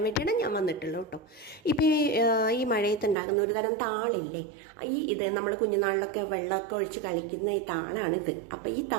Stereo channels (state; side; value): drops out; left; at 3.2 s